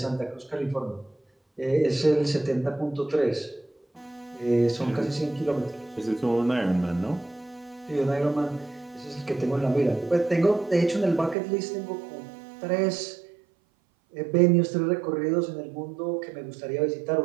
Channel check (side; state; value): left; drops out; at 11.4 s